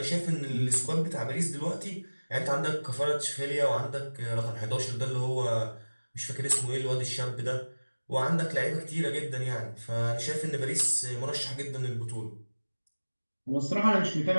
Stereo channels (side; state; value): both; inverted; correlation -1.00